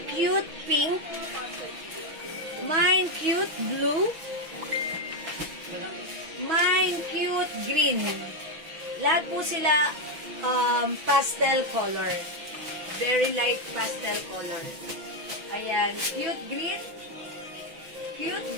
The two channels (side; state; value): left; late; 5.9 ms